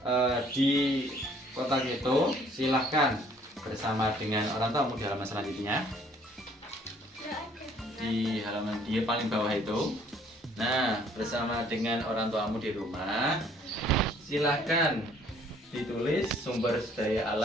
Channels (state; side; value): normal; both; correlation 0.60